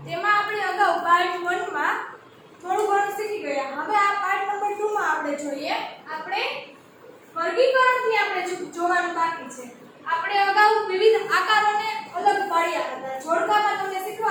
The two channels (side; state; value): both; identical; correlation 1.00